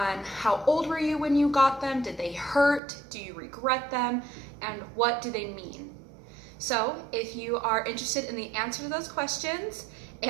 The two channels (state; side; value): drops out; left; at 2.8 s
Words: how old were you when you got them, did they hurt, do you regret them, and what do they mean? So if you are interested in the answer to those questions